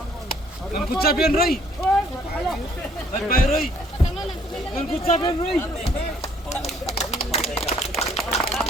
Ang kutsabian roi. Bay roi. Ang kutsabian roi.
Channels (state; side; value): normal; both; correlation 0.63